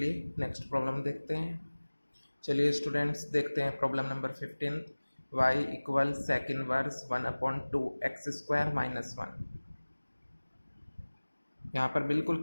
नेक्स्ट प्रॉब्लम देखते हैं। चलिए स्टूडेंट्स देखते हैं problem number 15, y equal sec inverse 1 upon 2 X square minus 1। यहाँ पर बिल्कुल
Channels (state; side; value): inverted; both; correlation -1.00